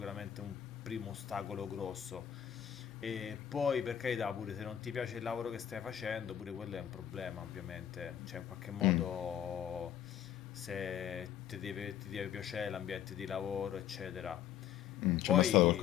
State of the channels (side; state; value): right; quieter; 10.2 dB